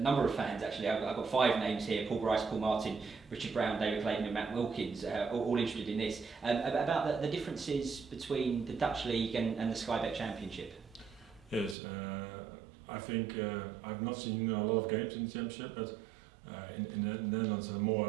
of fans actually. I've got 5 names here: Paul Bryce, Paul Martin, Richard Brown, David Clayton, and Matt Wilkins. All interested in this. About the differences between the Dutch League and the Sky Bet Championship. Yes, I think I've not seen a lot of games in the Championship, but in the Netherlands are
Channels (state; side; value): drops out; left; at 11.8 s